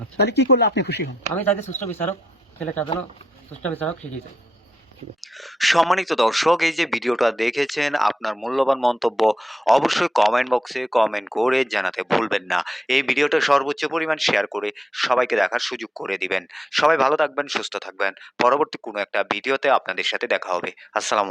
তাহলে কি করলে আপনি খুশি হন? আমি চাইছি সুষ্ঠু বিচারক, ছেলেটা যেন সুষ্ঠু বিচারক শিখিয়ে চাই। সম্মানিত দর্শক, এই যে ভিডিওটা দেখেছেন, আপনার মূল্যবান মন্তব্য অবশ্যই কমেন্ট বক্সে কমেন্ট করে জানাতে ভুলবেন না। এই ভিডিওটা সর্বোচ্চ পরিমাণ শেয়ার করে সবাইকে দেখার সুযোগ করে দিবেন। সবাই ভালো থাকবেন, সুস্থ থাকবেন। পরবর্তী কোনো একটা ভিডিওতে আপনাদের সাথে দেখা হবে। আসসালামু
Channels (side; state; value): both; normal; correlation 0.84